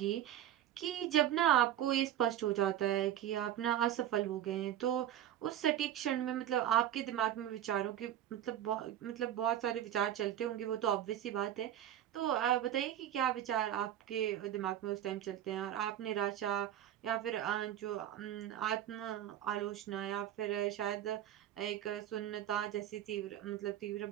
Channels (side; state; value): left; quieter; 11.4 dB